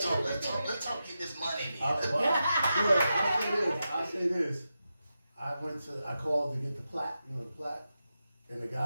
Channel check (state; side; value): inverted; both; correlation -0.89